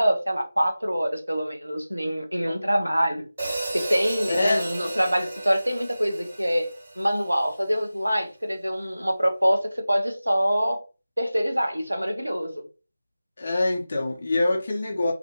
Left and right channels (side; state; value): both; inverted; correlation -0.96